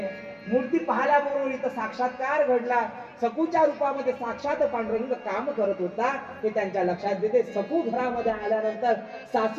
मूर्ती पाहिल्याबरोबर इथं साक्षात्कार घडला. सखूच्या रूपामध्ये साक्षात पांडुरंग काम करत होता हे त्यांच्या लक्षात येते. सखू घरामध्ये आल्यानंतर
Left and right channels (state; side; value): identical; both; correlation 1.00